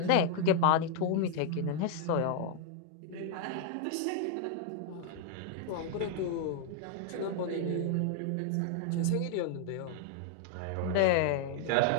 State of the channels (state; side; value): different; both; correlation 0.00